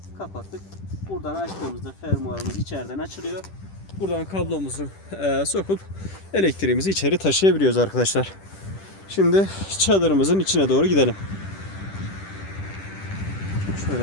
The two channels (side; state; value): right; late; 10 ms